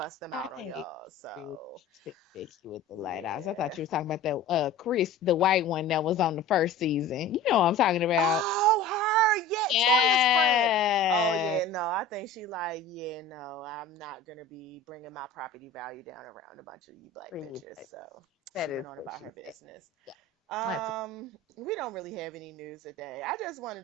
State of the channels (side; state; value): right; quieter; 3.3 dB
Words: them out on I y'all. agree. So, Becky with the light eyes. I thought yeah. you were talking about that Chris, the white one that was on the first season. You know what I'm talking about. Oh, her, yeah, Toya's friend. Oh, Yeah. yeah, no, I think she like, yeah, no, I'm not gonna be bringing my property value down around a bunch of you black Pretty bitches. much. So That she is went on what about she her said. business. Yeah. That's We don't really have any news today. I just